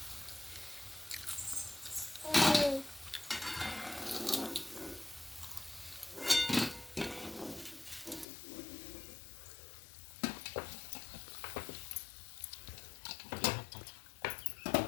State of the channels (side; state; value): right; drops out; at 8.2 s